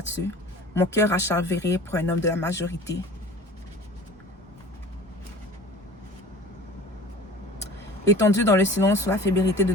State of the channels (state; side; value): normal; both; correlation 0.42